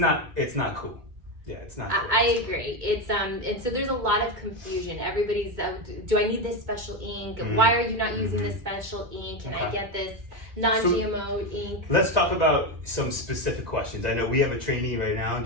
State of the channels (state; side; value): late; left; 2.2 ms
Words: cool." Yeah, it's not cool. I agree. It's and so there's a lot of confusion. Everybody's, do I need this special ink? Why are you not using this special ink? Can I get this non-GMO ink? Let's talk about some specific questions. I know we have a trainee right now. Do